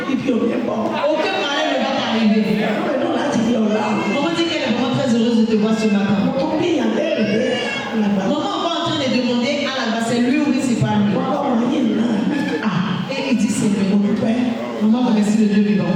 Aucun malheur ne va t'arriver. Maman dit qu'elle est vraiment très heureuse de te voir ce matin. Maman va en train de demander à la base, c'est lui ou c'est pas lui. Et il dit c'est lui. Maman remercie le Dieu vivant.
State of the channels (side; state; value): both; identical; correlation 1.00